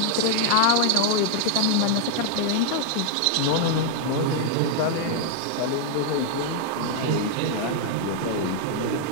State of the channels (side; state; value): both; different; correlation 0.00